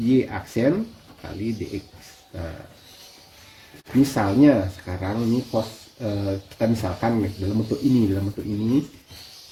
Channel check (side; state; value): both; identical; correlation 1.00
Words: aksen kali dx. Nah, misalnya sekarang ini kita misalkan dalam bentuk ini